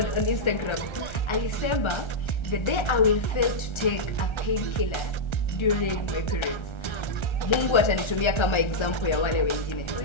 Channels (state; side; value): late; right; 1.3 ms